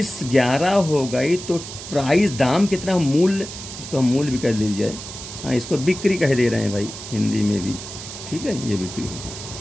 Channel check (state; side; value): noise; right; hiss, 11 dB below the sound